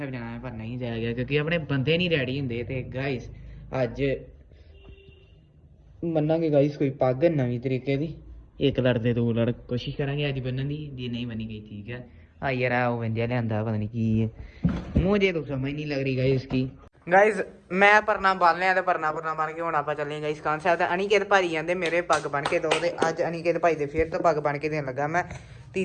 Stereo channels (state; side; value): identical; both; correlation 1.00